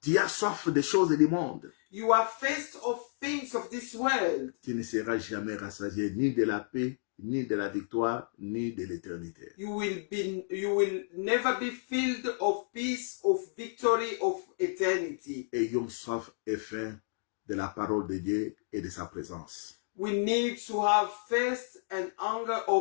Tu as soif des choses du monde. You are first of things of this world. Tu ne seras jamais rassasié ni de la paix, ni de la victoire, ni de l'éternité. You will never be filled of peace, of victory, of eternity. Ayons soif et faim de la parole de Dieu et de sa présence. We need to have thirst and hunger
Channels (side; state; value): right; silent; digital silence